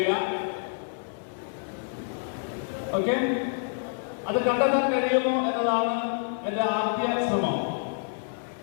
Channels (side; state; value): right; silent; digital silence